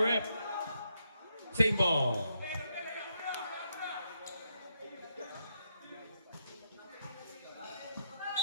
rep? Same ball.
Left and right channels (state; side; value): inverted; both; correlation -0.79